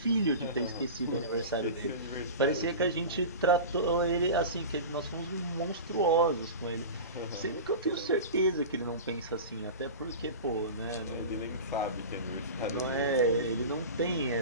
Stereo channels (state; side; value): inverted; both; correlation -0.30